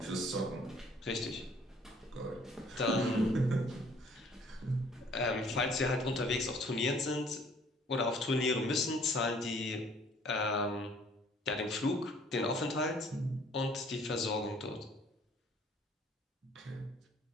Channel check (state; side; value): normal; both; correlation 0.57